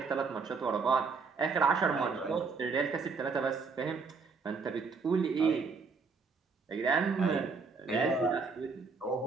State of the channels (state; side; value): quieter; left; 4.8 dB